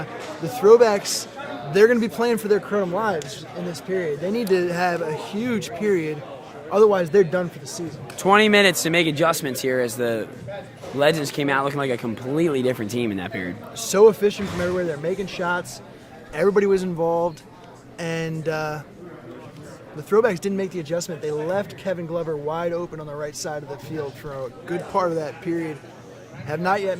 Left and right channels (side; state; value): both; identical; correlation 1.00